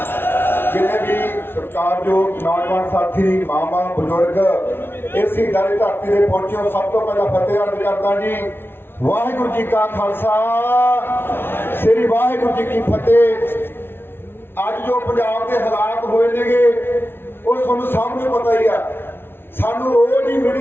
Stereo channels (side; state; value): right; late; 0.11 ms